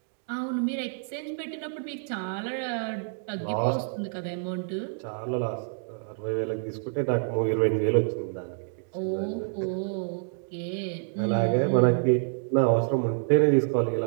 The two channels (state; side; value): silent; left; digital silence